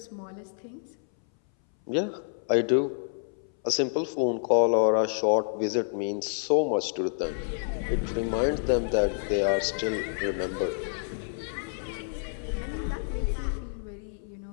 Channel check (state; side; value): silent; right; 59 dB below the other